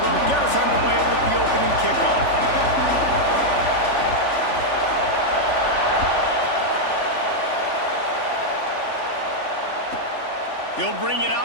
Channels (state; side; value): late; right; 3.4 ms